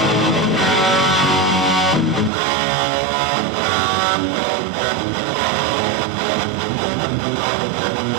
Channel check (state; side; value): drops out; left; at 2.3 s